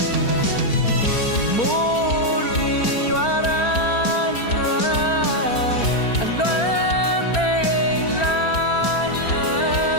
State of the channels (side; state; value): right; late; 4.3 ms